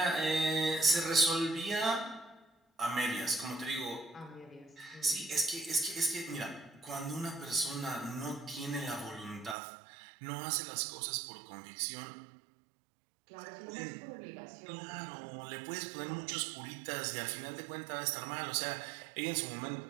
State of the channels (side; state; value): left; drops out; at 9.6 s